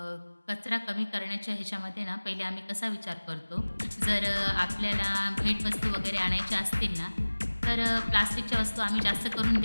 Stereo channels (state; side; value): inverted; both; correlation -1.00